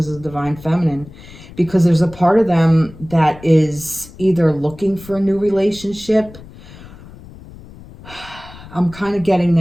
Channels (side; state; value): left; noise; rumble, 19 dB below the sound